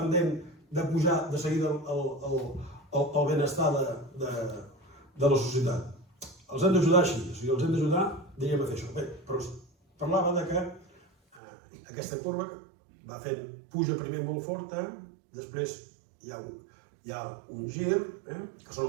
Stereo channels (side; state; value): left; drops out; at 11.4 s